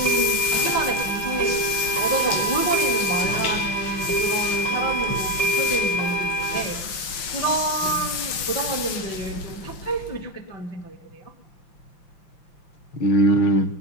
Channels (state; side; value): late; right; 5.8 ms